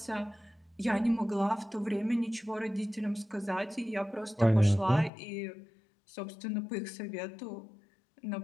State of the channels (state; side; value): drops out; right; at 5.1 s